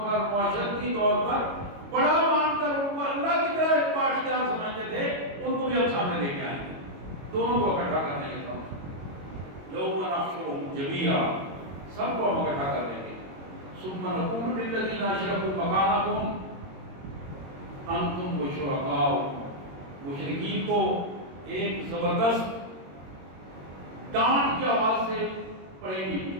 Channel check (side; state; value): left; late; 22 ms